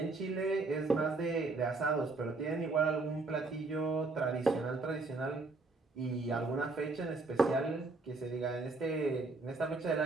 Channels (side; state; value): left; quieter; 3.5 dB